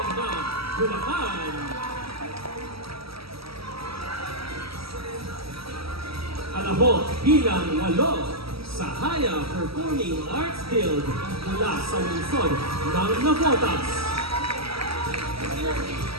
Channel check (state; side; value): late; left; 0.76 ms